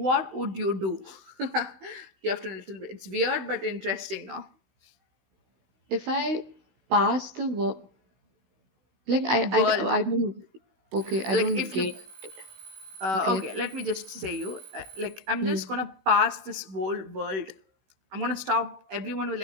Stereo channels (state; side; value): late; left; 16 ms